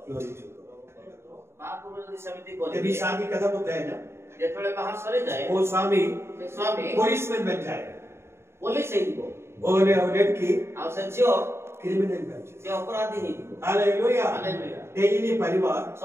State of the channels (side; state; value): left; late; 0.12 ms